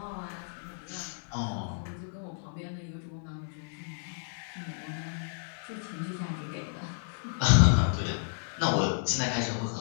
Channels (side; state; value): right; silent; digital silence